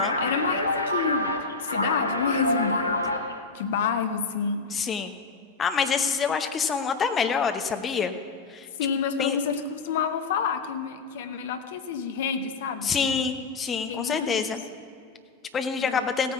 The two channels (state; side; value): quieter; right; 4.5 dB